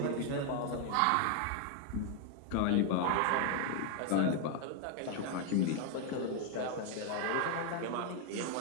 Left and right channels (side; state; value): both; different; correlation 0.00